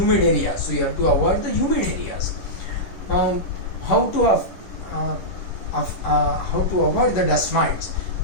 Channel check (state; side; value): late; right; 11 ms